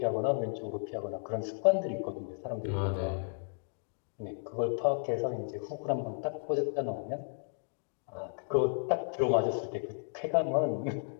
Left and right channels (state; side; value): silent; right; digital silence